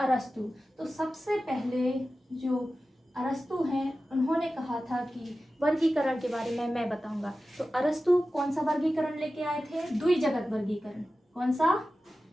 तो सबसे पहले जो अरस्तु हैं उन्होंने कहा था कि वर्गीकरण के बारे में मैं बताऊंगा। तो अरस्तु कौन सा वर्गीकरण लेके आए थे? द्विजगत वर्गीकरण। कौन सा?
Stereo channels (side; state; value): both; normal; correlation 0.94